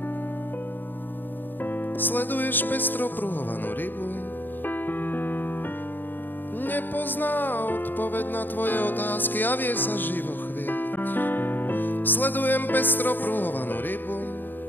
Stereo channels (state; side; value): late; right; 0.092 ms